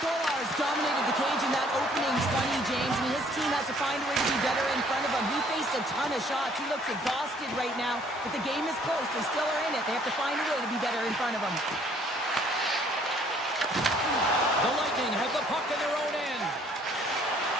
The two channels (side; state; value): both; normal; correlation 0.61